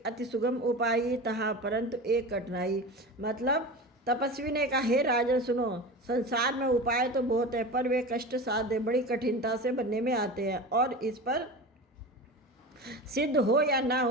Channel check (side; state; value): both; normal; correlation 0.30